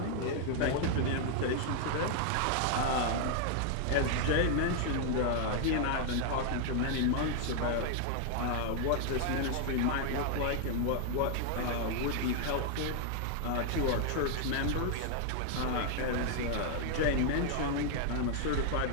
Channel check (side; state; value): both; different; correlation 0.00